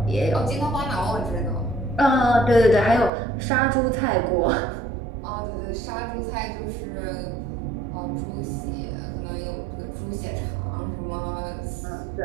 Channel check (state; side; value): drops out; left; at 3.1 s